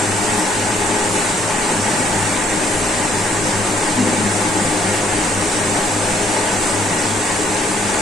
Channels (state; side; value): normal; both; correlation 0.65